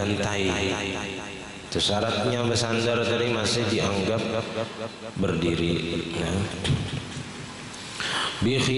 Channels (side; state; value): both; identical; correlation 1.00